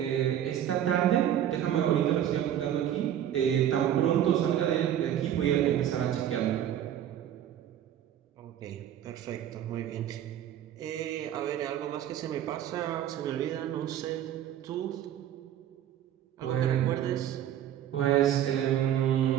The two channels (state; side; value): quieter; left; 10.8 dB